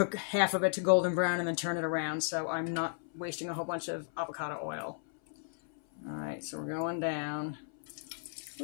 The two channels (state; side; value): silent; right; 55 dB below the other